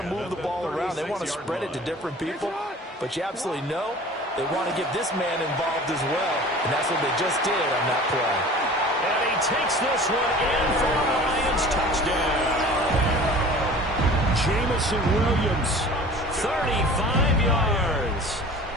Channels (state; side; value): normal; both; correlation 0.43